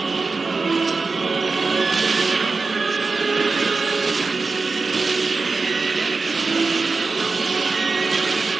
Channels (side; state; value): left; quieter; 4.1 dB